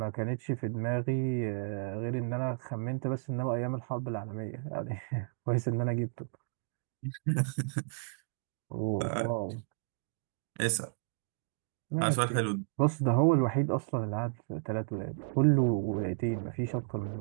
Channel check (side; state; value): left; silent; digital silence